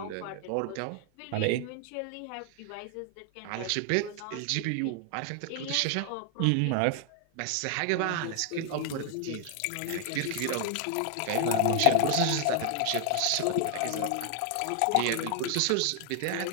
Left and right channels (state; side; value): different; both; correlation 0.00